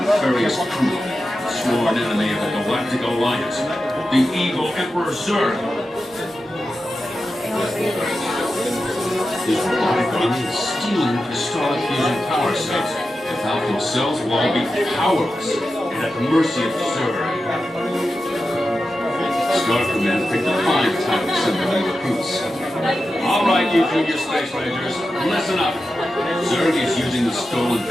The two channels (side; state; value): both; normal; correlation 0.91